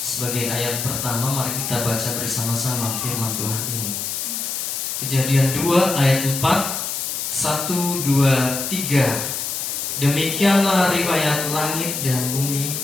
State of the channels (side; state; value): left; noise; hiss, 3 dB below the sound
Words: Sebagai ayat pertama, mari kita baca bersama-sama firman Tuhan ini. Kejadian 2 ayat 4, 1, 2, 3. Demikianlah riwayat langit dan bumi